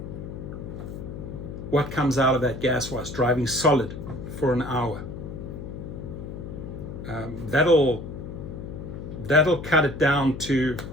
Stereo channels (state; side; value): noise; left; hum, 9 dB below the sound